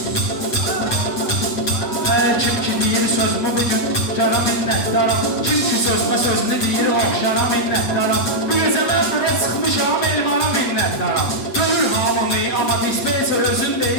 Hər kim ki deyir sözümü bugün şara minnətdara. Kim ki sözmə sözünü deyir oxşara minnətdara. Bu gecə mən bura çıxmışam elmana minnətdara. Görür hamını amma dispenser özün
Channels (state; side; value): late; right; 7.9 ms